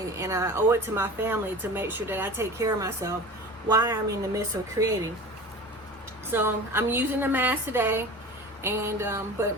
and I owe it to my family to make sure that I take care of myself while I'm in the midst of creating. So I'm using the mask today, and but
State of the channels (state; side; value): normal; both; correlation 0.36